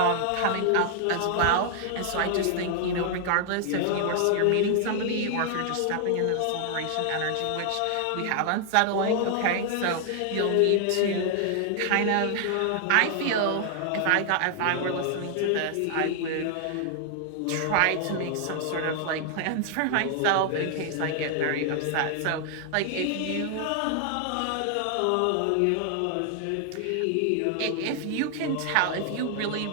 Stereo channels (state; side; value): different; both; correlation 0.00